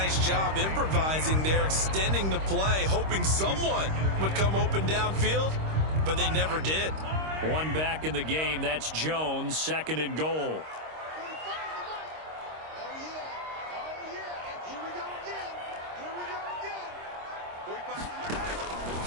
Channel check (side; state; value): left; late; 26 ms